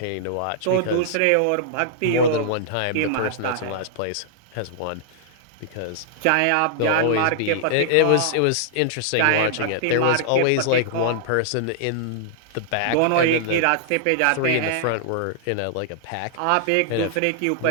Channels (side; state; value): both; different; correlation -0.01